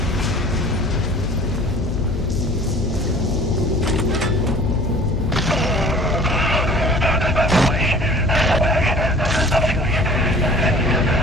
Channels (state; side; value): noise; left; hum, 5 dB below the sound